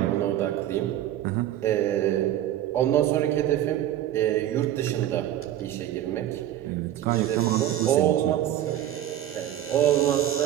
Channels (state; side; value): quieter; left; 12.3 dB